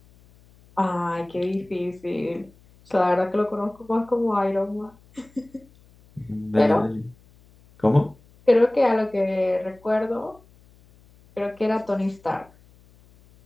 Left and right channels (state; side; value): noise; left; hum, 28 dB below the sound